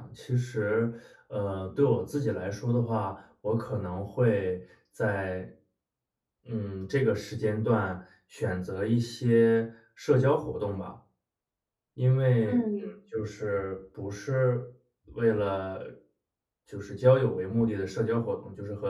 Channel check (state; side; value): identical; both; correlation 1.00